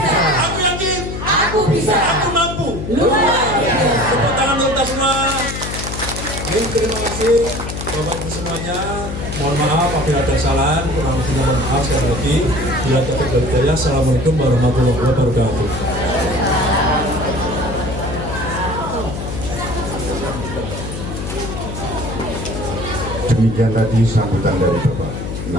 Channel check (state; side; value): noise; left; hum, 6 dB below the sound